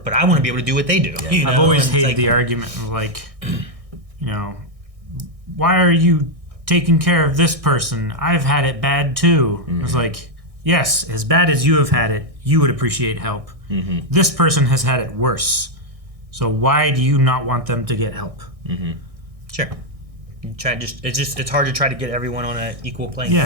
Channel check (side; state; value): left; late; 1.6 ms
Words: But I want to be able to do what they do. You know? I've always hated the argument of like, you know, why are you taking care of this person? I've had it bad too. It's like, yes, as bad as you have had it, you would appreciate help. Mm-hmm. This person has had it worse. So why do you not want them to get help? Mm-hmm. Sure. It's hard to try to get everyone on an equal playing